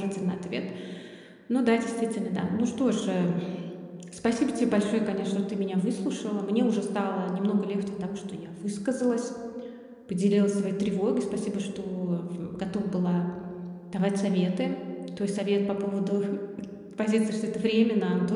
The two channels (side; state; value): both; identical; correlation 1.00